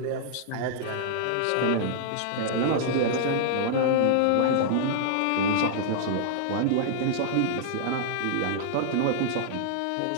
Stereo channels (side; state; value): both; different; correlation -0.01